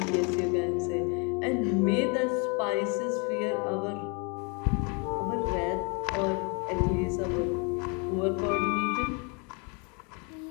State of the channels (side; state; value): right; quieter; 33.9 dB